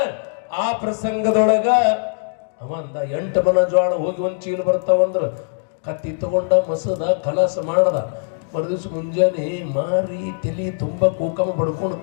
ಆ ಪ್ರಸಂಗದೊಳಗ ಅವಂದ 8 ಮನ ಜೋಳ ಹೋಗಿ ಒಂದು ಚೀಲ ಬರ್ತಾವಂದ್ರ ಕತ್ತಿ ತಗೊಂಡ ಮಸದ ಕಲಾಸ ಮಾಡದ. ಮರುದಿವ್ಸ ಮುಂಜಾನೆ ಮಾರಿ ತಲಿ ತುಂಬ ಕೂಕಮ ಬಡ್ಕೊಂಡು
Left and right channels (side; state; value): right; silent; digital silence